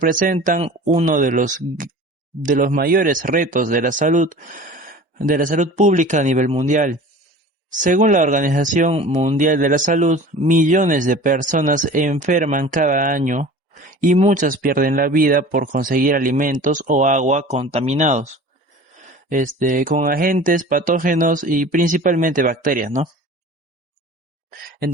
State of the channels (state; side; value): normal; both; correlation 0.41